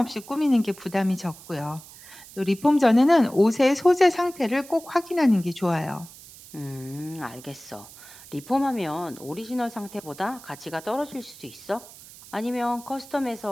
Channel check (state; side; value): noise; right; hiss, 19 dB below the sound